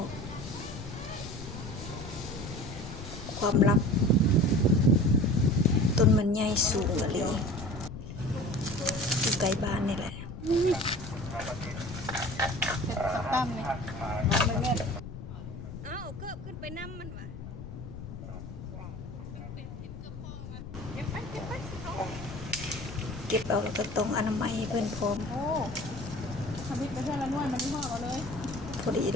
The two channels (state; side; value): noise; left; rumble, 10 dB below the sound